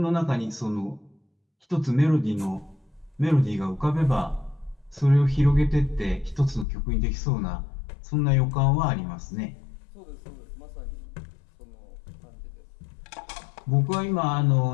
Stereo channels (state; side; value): drops out; right; at 6.7 s